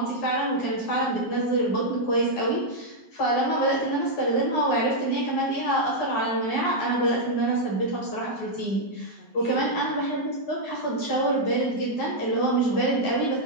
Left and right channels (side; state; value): right; late; 11 ms